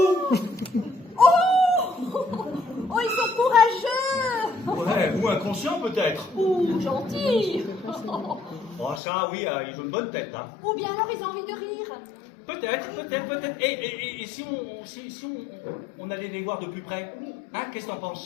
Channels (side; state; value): right; drops out; at 9.0 s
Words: Oh, ils sont courageux. Ouais, ou inconscient peut-être. Ou gentils. Oh, ça, oui, ils ont une bonne tête, hein. Ou bien alors ils ont envie de rire. Peut-être. Et si on allait les voir de plus près? Hein, qu'est-ce que t'en